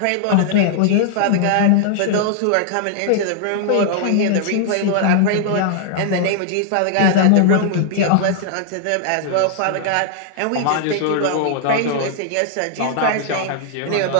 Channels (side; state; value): both; different; correlation -0.01